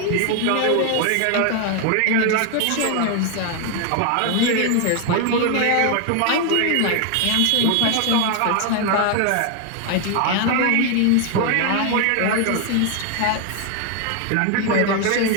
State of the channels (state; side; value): different; both; correlation 0.01